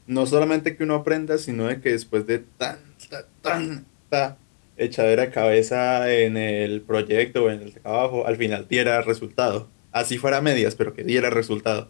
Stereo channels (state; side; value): silent; right; 64 dB below the other